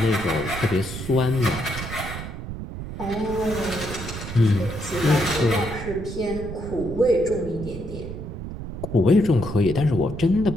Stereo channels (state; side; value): noise; right; rumble, 8 dB below the sound